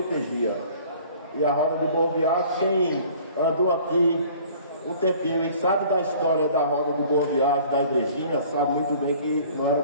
E a roda de Boa Viagem, quem andou aqui um tempinho e sabe da história da roda do Boa Viagem, da igrejinha, sabe muito bem que não era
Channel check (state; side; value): inverted; both; correlation -0.51